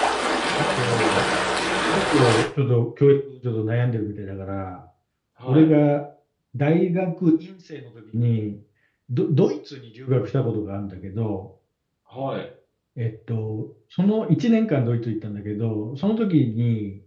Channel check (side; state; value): both; identical; correlation 1.00